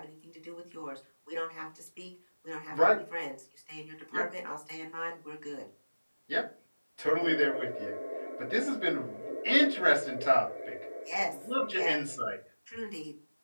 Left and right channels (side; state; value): both; inverted; correlation -1.00